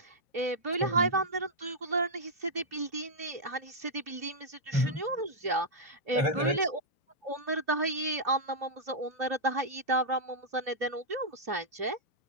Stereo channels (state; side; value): late; left; 2.9 ms